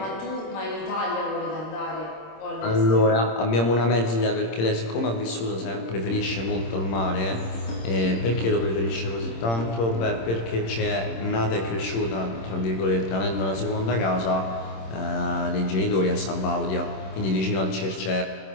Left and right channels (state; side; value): late; right; 26 ms